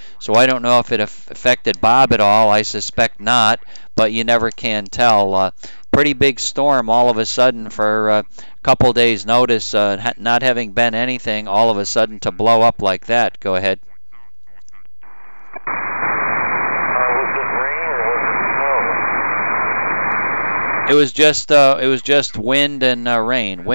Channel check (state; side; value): inverted; both; correlation -1.00